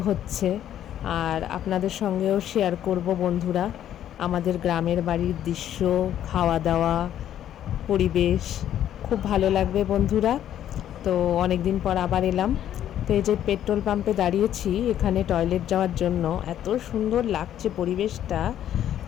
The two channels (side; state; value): right; quieter; 11.0 dB